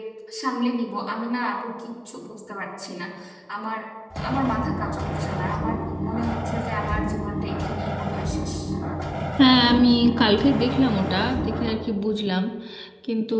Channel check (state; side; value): identical; both; correlation 1.00